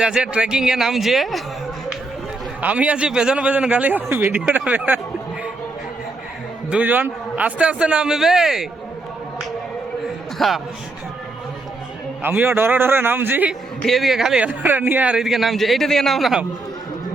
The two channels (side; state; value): left; quieter; 3.2 dB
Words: যাচ্ছে ট্রেকিংয়ে নামছে, আমি আছি পেছনে পেছনে গালি ভিডিওটা দুজন আস্তে আস্তে নামবে, আমিও ডরে ডরে নামছি, এদিকে খালি নিয়ে আর এদিকে নামছে, এইটা দিকে নাম নাম।